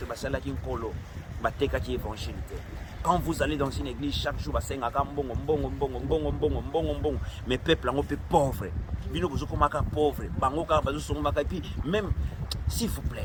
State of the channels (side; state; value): both; identical; correlation 1.00